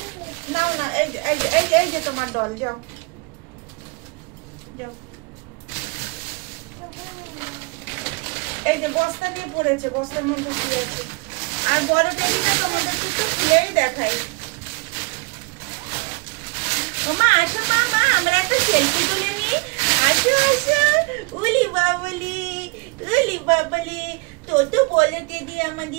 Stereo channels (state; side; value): quieter; left; 29.1 dB